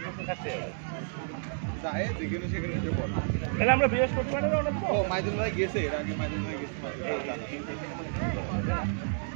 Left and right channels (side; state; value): left; silent; digital silence